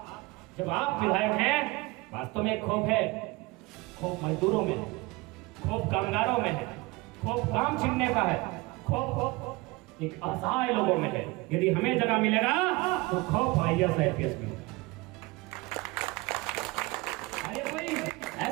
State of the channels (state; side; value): quieter; left; 23.4 dB